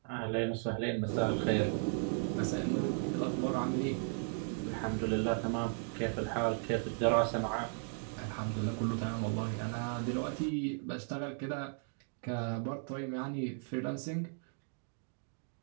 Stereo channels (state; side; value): silent; left; 54 dB below the other